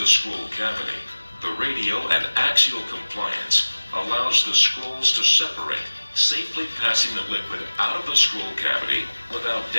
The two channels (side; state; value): both; inverted; correlation -1.00